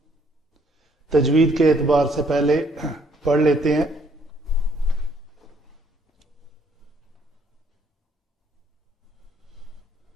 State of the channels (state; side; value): normal; both; correlation 0.66